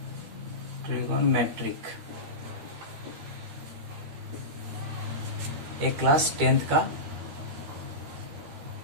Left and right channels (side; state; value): left; late; 13 ms